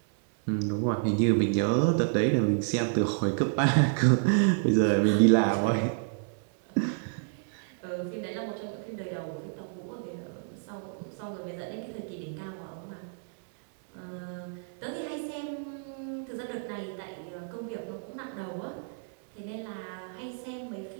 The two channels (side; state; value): left; silent; digital silence